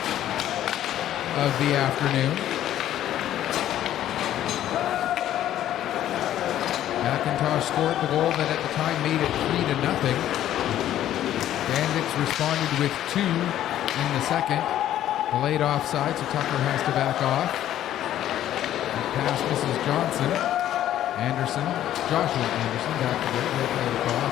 of the afternoon. McIntosh scored the goal that at the time made it 3-0. Bandits responded with 2 in the second. Delayed offside, so Tucker has to back off. The pass misses Johnson. Joshua Anderson back to right, play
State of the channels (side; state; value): right; quieter; 12.1 dB